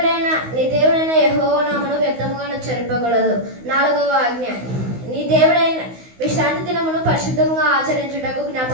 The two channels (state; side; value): late; left; 16 ms